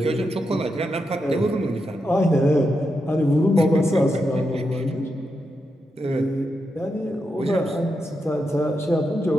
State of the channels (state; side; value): normal; both; correlation 0.85